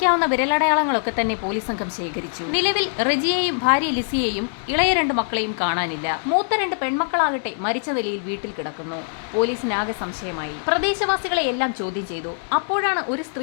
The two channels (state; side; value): silent; right; digital silence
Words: വിരലടയാളങ്ങളൊക്കെ തന്നെ പോലീസ് സംഘം ശേഖരിച്ചു. നിലവിൽ റജിയെയും ഭാര്യ ലിസിയെയും ഇളയ 2 മക്കളെയും കാണാനില്ല. മൂത്ത 2 പെൺമക്കളാകട്ടെ മരിച്ച നിലയിൽ വീട്ടിൽ കിടക്കുന്നു. പോലീസിനാകെ സംശയമായി. പ്രദേശവാസികളെ എല്ലാം ചോദ്യം ചെയ്തു. അപ്പോഴാണ് ഒരു